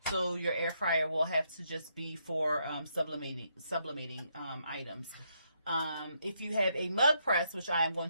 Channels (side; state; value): both; inverted; correlation -0.76